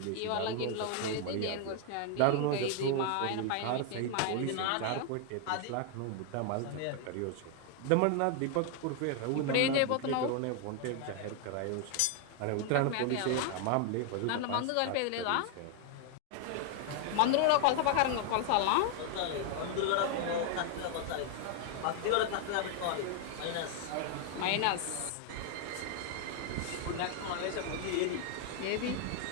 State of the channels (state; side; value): different; both; correlation 0.00